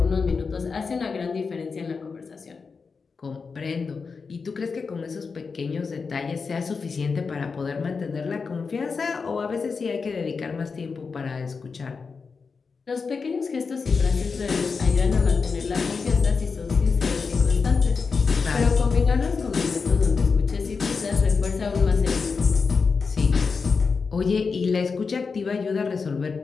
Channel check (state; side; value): quieter; right; 5.0 dB